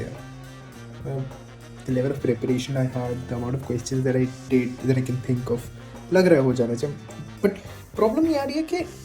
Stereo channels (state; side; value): identical; both; correlation 1.00